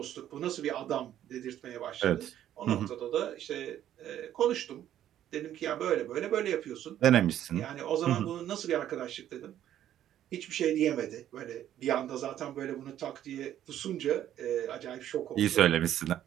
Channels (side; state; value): left; quieter; 11.4 dB